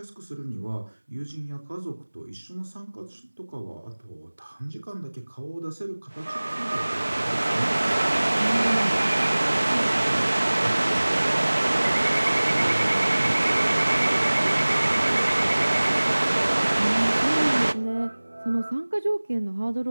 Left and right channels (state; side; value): inverted; both; correlation -1.00